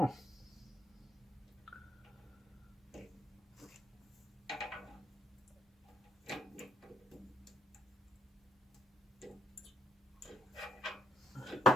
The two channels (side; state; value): both; normal; correlation 0.70